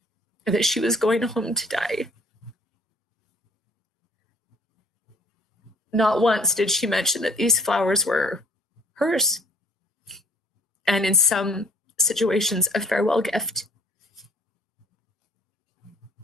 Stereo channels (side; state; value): both; normal; correlation 0.56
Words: that she was going home to die. Not once did she mention that these flowers were hers. And in some situations, a farewell gift.